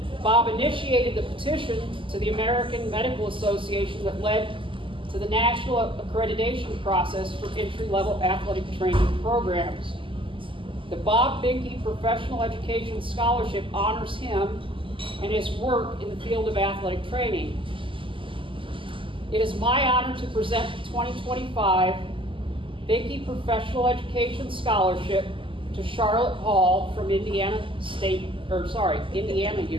Bob initiated the petition to the American Medical Association that led to the national accreditation process for entry-level athletic training programs. The Bob Behnke Professional Education Scholarship honors him and his work in the field of athletic training. It is my honor to present the 2025 Behnke Professional Education Scholarship to Charlotte Hall from Indiana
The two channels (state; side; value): late; left; 0.25 ms